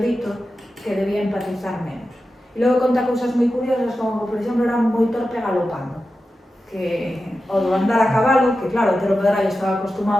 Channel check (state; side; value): normal; both; correlation 0.92